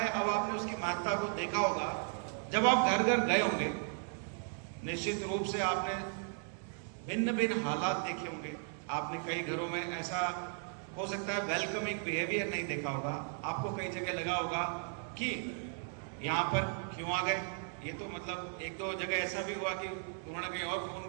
अब आपने उसकी महत्ता को देखा होगा। जब आप घर घर गए होंगे, निश्चित रूप से आपने भिन्न भिन्न हालात देखे होंगे। आपने कई घरों में ऐसा हो सकता है वेलकमिंग बिहेवियर नहीं देखा होगा। आपको कई जगह लगा होगा कि यहाँ पर क्यों आ गए। ये तो मतलब एक दो जगह ऐसा भी हुआ कि उन्होंने कहीं और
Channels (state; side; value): silent; left; 54 dB below the other